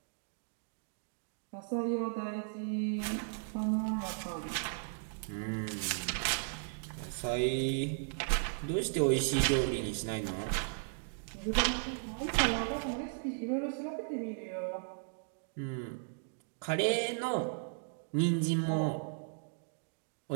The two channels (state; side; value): silent; left; digital silence